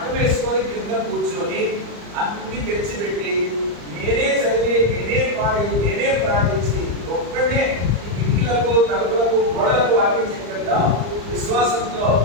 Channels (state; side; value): late; left; 34 ms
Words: వేసుకొని కింద కూర్చొని అన్ని తెచ్చిపెట్టి నేనే చదివి నేనే పాడి నేనే ప్రార్థించి ఒక్కడే ఈ కిటికీలకు తలుపులకు గోడలకు వాక్యం చెప్పేదా విశ్వాసంతో